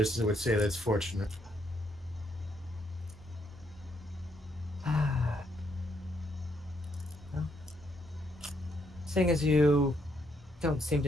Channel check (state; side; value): normal; both; correlation 0.74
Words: would say that's fortunate. Well, seeing as you don't seem